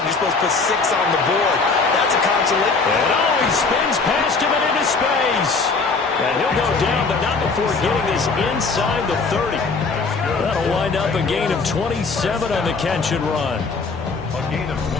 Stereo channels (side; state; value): right; quieter; 4.3 dB